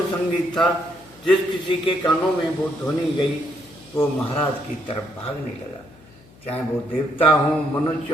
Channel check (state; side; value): noise; left; hum, 25 dB below the sound